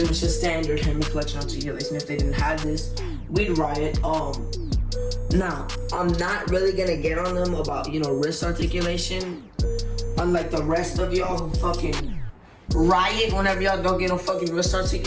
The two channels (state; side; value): identical; both; correlation 1.00